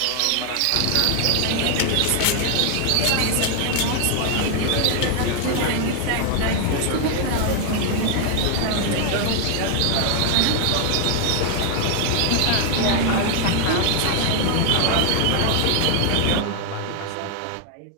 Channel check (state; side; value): different; both; correlation 0.00